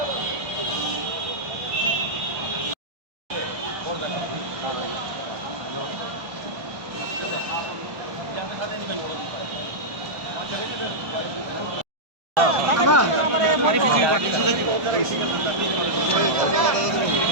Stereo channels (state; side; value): late; left; 1.2 ms